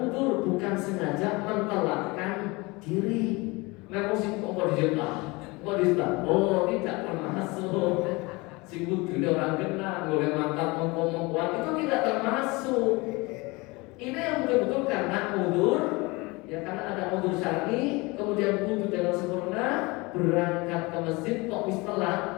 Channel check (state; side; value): quieter; right; 24.6 dB